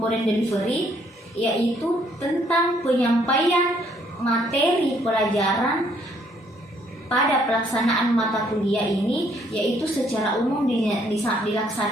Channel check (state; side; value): normal; both; correlation 0.67